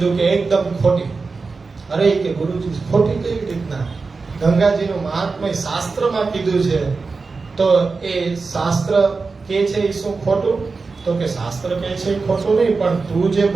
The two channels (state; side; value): quieter; left; 4.3 dB